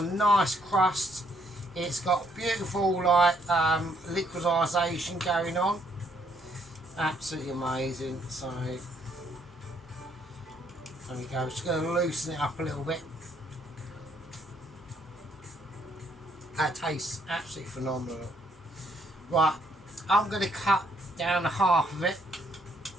a nice crust. It's got beautiful like liquidisation going on. Absolutely amazing. So there we go. Just going to loosen it up a little bit. That tastes absolutely phenomenal. Right, I'm going to cut down half of it.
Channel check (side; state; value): both; normal; correlation 0.69